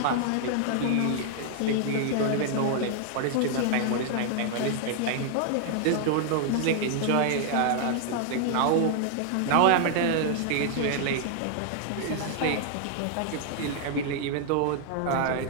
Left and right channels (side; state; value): both; different; correlation 0.00